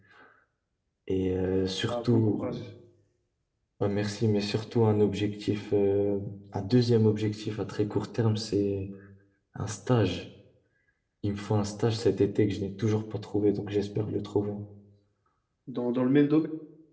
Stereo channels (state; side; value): identical; both; correlation 1.00